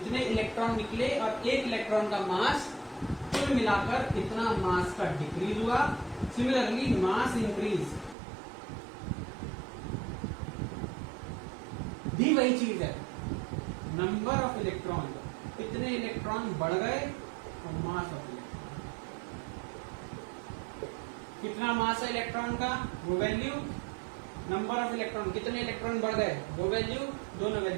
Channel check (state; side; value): drops out; left; at 8.2 s